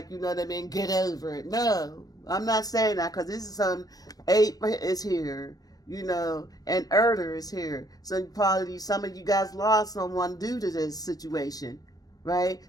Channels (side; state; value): right; late; 0.18 ms